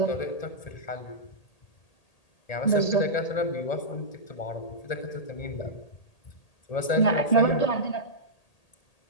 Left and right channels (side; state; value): right; late; 1.8 ms